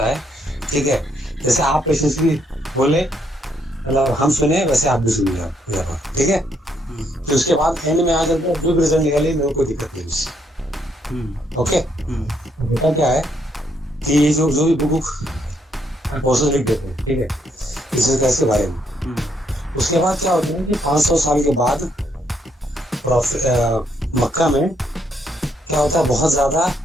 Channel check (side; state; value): both; normal; correlation 0.73